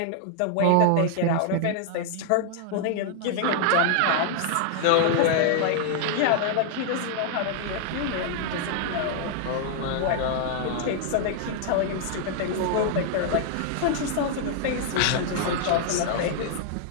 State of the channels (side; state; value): both; different; correlation -0.01